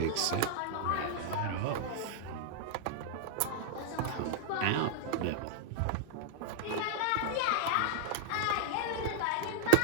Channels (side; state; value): both; different; correlation -0.01